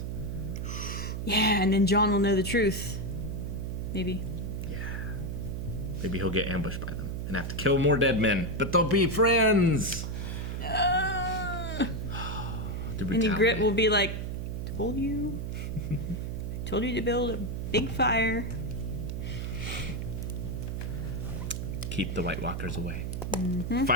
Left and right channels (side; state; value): right; noise; hum, 3 dB below the sound